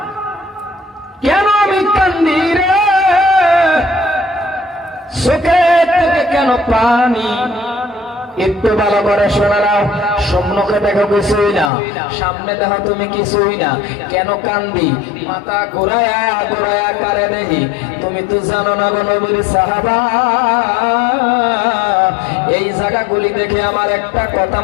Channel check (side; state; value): right; drops out; at 11.7 s